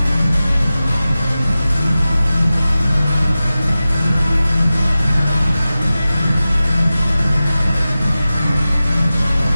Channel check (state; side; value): inverted; both; correlation -0.95